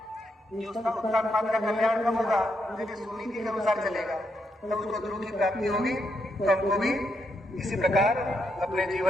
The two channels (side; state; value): both; normal; correlation 0.80